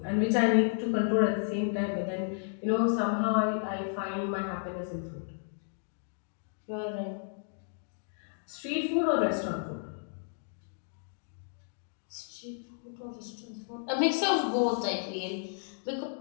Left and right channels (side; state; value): right; silent; digital silence